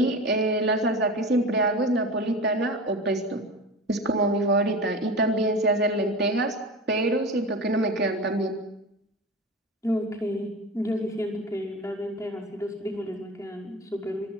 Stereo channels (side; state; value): both; normal; correlation 0.30